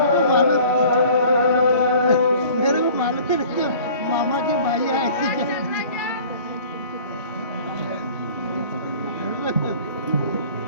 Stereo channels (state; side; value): inverted; both; correlation -0.48